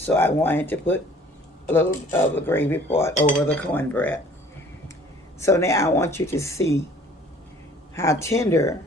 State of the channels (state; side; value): normal; both; correlation 0.53